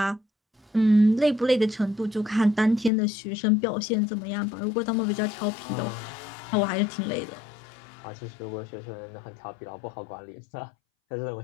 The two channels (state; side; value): drops out; right; at 2.9 s